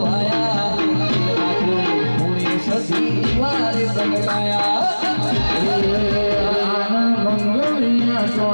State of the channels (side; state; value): both; inverted; correlation -1.00